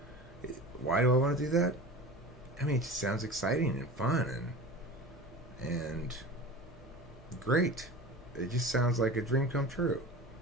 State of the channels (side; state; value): both; normal; correlation 0.34